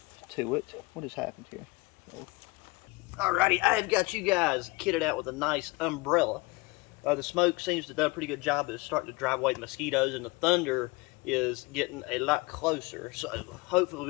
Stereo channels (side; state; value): right; quieter; 24.3 dB